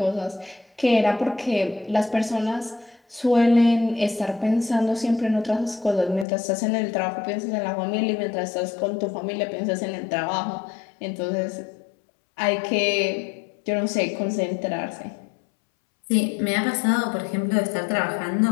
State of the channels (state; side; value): drops out; right; at 6.2 s